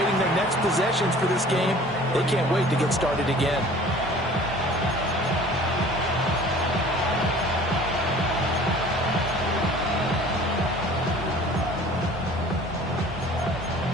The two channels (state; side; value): normal; both; correlation 0.47